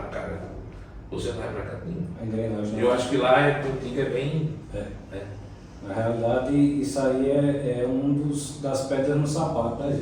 você não vai para cá nenhum. Eu acho que lá contigo é bem... Na realidade, isso aí é das pedras no sapato da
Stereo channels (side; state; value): both; identical; correlation 1.00